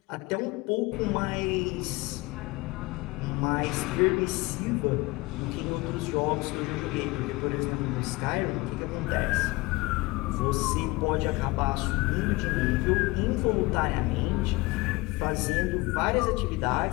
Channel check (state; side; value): quieter; right; 22.7 dB